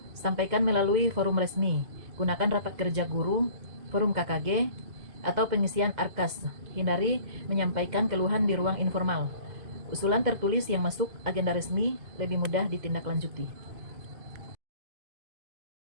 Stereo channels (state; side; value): late; left; 2.0 ms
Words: sampaikan melalui forum resmi. Gunakan rapat kerja guru, forum KKG, atau pengisian ARKAS. Hindari menyampaikan keluhan di ruang informal. Usulan tertulis yang masuk agenda resmi lebih mudah ditindaklanjuti.